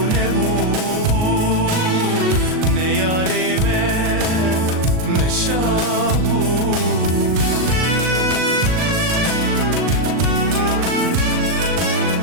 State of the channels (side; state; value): left; late; 38 ms